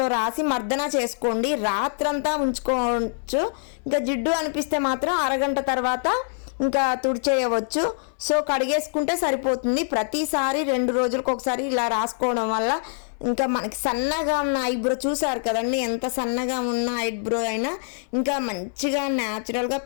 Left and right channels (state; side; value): silent; right; 62 dB below the other